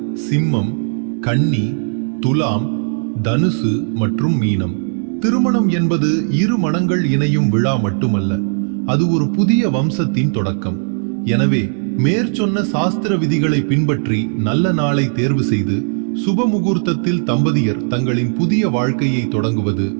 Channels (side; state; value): left; silent; digital silence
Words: சிம்மம், கன்னி, துலாம், தனுசு மற்றும் மீனம். திருமணம் என்பது 2 மனங்கள் இணையும் விழா மட்டுமல்ல, அது ஒரு புதிய வம்சத்தின் தொடக்கம். எனவே மேற்சொன்ன சாஸ்திர விதிகளை பின்பற்றி நல்ல நாளை தேர்வு செய்து சுப முகூர்த்தத்தில் தம்பதியர் தங்களின் புதிய வாழ்க்கையை தொடங்குவது